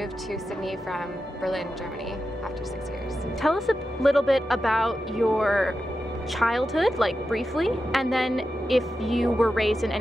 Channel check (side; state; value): both; normal; correlation 0.90